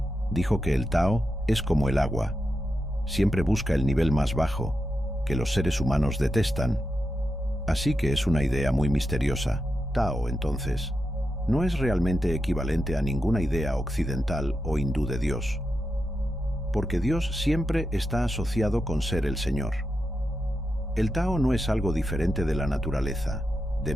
dijo que el Tao es como el agua. Siempre busca el nivel más bajo, que los seres humanos detestan. Así que es una idea muy misteriosa. Tao, entonces, no es realmente equivalente a ninguna idea occidental o hindú de Dios, porque Dios siempre está asociado con ser el Señor. El Tao no es algo diferente de la naturaleza, de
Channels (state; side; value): normal; both; correlation 0.88